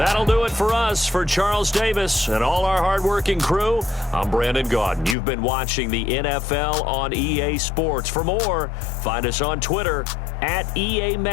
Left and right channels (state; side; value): drops out; right; at 5.2 s